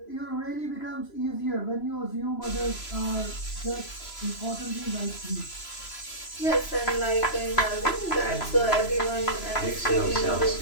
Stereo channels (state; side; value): late; right; 3.0 ms